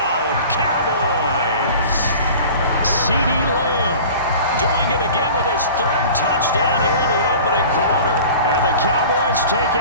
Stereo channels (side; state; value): both; inverted; correlation -0.41